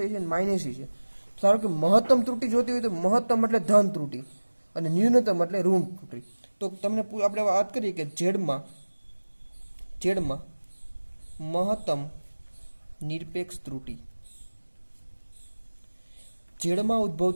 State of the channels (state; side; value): inverted; both; correlation -1.00